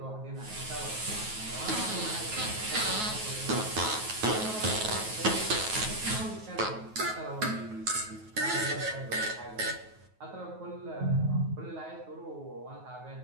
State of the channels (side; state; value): left; late; 9.3 ms